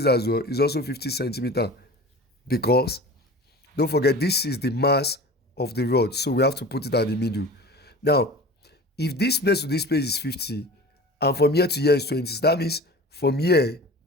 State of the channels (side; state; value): both; normal; correlation 0.37